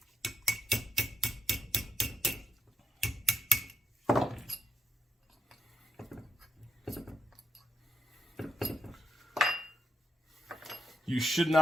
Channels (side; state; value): both; normal; correlation 0.84